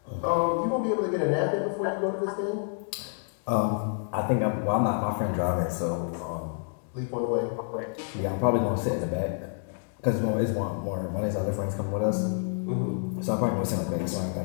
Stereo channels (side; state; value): right; silent; digital silence